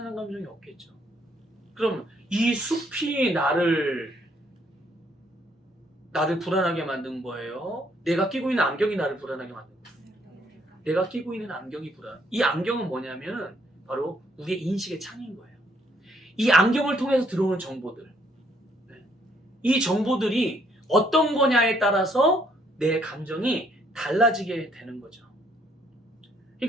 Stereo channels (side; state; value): both; normal; correlation 0.68